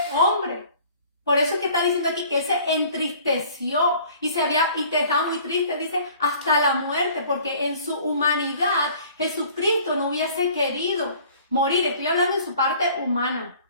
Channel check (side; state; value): both; inverted; correlation -0.51